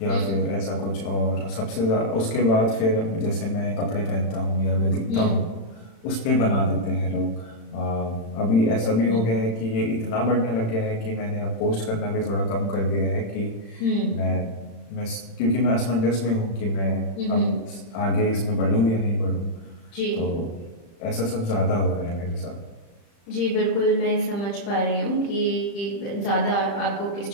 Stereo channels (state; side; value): late; right; 35 ms